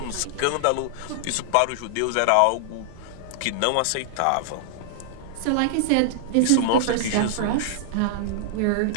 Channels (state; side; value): different; both; correlation -0.01